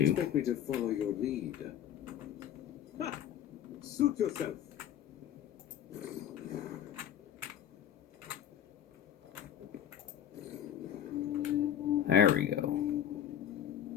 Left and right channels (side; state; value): right; quieter; 10.3 dB